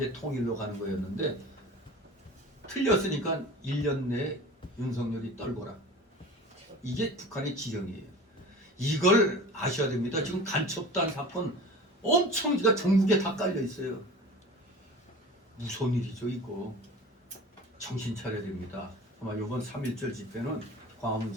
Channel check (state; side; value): normal; both; correlation 0.38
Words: 통일로 가는 거였는데 틀렸으니까 1년 내에 윤석열이 떨거라. 이게 북한의 지령이에요. 이걸 아셔야 됩니다. 지금 간첩단 사건 엄청 전국에 다 깔려 있어요. 무서운 일이죠 이거. 정신 차려야 됩니다. 아마 이번 3.1절 집회는, 광화문